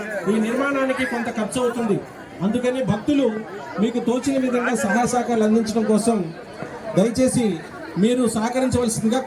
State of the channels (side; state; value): both; identical; correlation 1.00